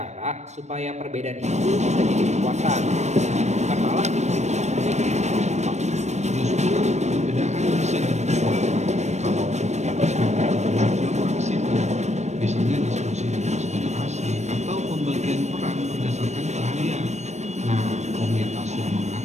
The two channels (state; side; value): late; left; 0.33 ms